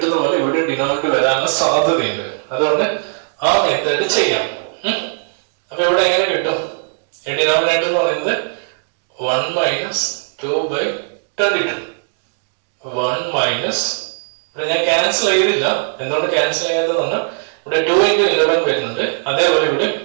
പോലെ ഇവിടെ ഡിനോമിനേറ്റർ വരാനുള്ള സാധ്യതയുണ്ട്. അതുകൊണ്ട് ആ മെത്തേഡ് ചെയ്യാം. അപ്പൊ ഇവിടെ എങ്ങനെ കിട്ടും? ഡിനോമിനേറ്റർ എന്ന് പറയുന്നത് 1 മൈനസ് 2/22. 1 മൈനസ് ഇവിടെ ഞാൻ ക്യാൻസൽ ചെയ്തില്ല. എന്തുകൊണ്ട് ക്യാൻസൽ ചെയ്യാത്തതാണ്? ഇവിടെ 2 into 11 വരുന്നുണ്ട്. അതേപോലെ ഇവിടെ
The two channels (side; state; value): left; silent; digital silence